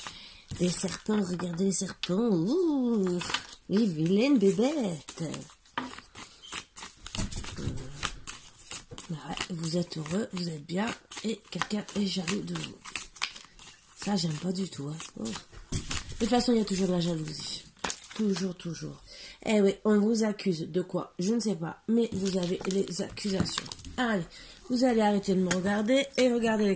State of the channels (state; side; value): identical; both; correlation 1.00